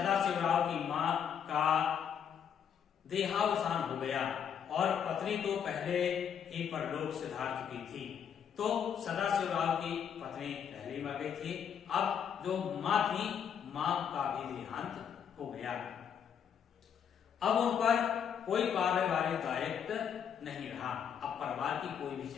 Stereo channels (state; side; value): quieter; right; 8.0 dB